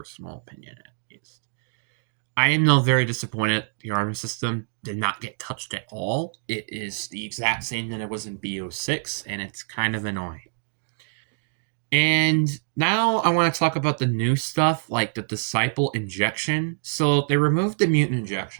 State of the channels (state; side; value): silent; left; digital silence